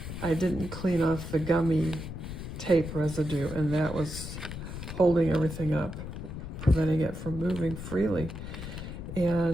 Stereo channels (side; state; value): left; noise; rumble, 8 dB below the sound